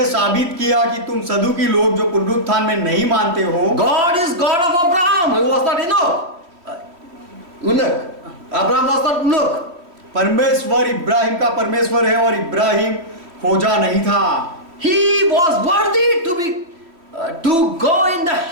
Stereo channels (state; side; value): late; left; 3.0 ms